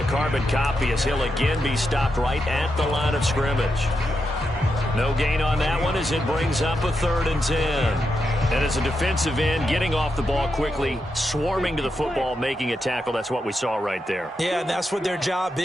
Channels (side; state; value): both; normal; correlation 0.85